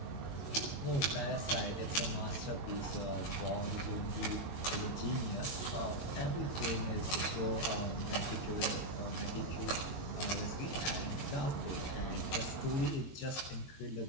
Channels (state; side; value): late; right; 21 ms